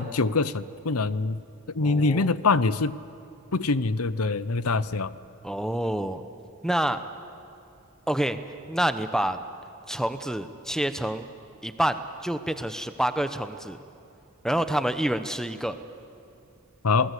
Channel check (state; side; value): normal; both; correlation 0.55